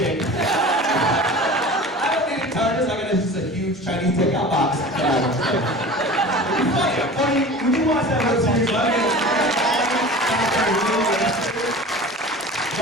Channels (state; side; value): normal; both; correlation 0.38